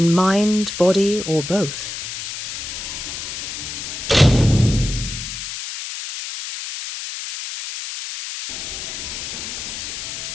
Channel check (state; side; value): noise; left; hiss, 7 dB below the sound